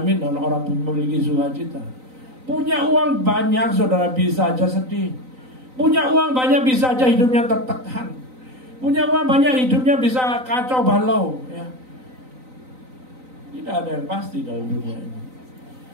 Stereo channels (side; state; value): left; late; 3.9 ms